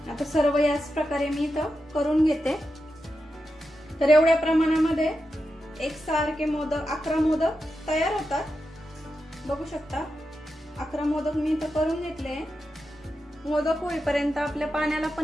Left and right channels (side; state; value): both; normal; correlation 0.89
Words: आता सर्व याच प्रकारे मी इथं करून घेते। तर एवढ्या प्रमाणामध्ये एकसारखे मोदक 11 मोदक तयार होतात। बघू शकता 11 मोदक मी इथं करून घेतले। मोदक होईपर्यंत आपल्या पाण्याला